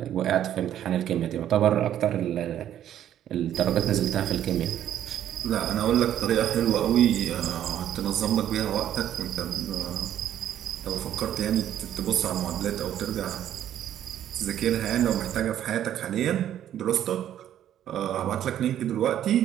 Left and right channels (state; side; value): quieter; left; 11.0 dB